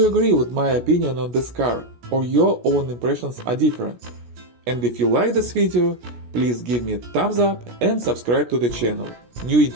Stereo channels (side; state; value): left; late; 17 ms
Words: agree with my opinion on this car, or your own impressions are different? And if you like this video, please give me a thumbs up and subscribe to the channel. New